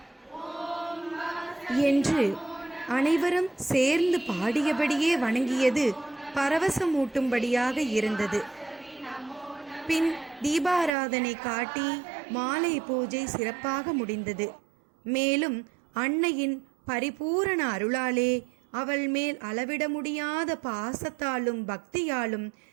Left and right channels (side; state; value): left; drops out; at 10.9 s